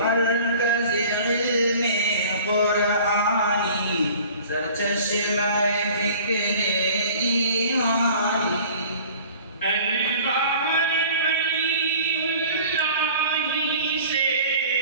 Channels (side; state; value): both; inverted; correlation -0.46